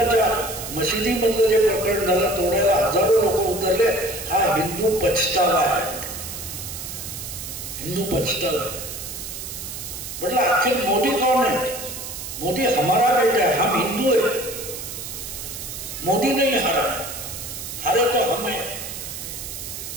मशिदीमधलं जे प्रकरण झालं, तोडायला हजारो लोक उतरले. हा हिंदू पछतावा आहे, हिंदू पछतावा आहे. म्हटलं आखिर मोदी कौन है? मोदी हमारा बेटा है, हम हिंदू है. मोदी नहीं हारा, हारे तो हम है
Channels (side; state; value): right; noise; hiss, 8 dB below the sound